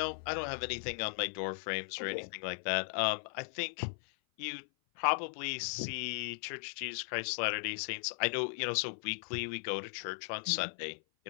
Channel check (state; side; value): silent; right; 53 dB below the other